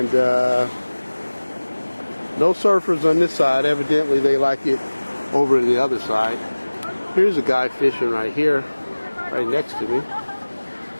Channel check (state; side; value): inverted; both; correlation -1.00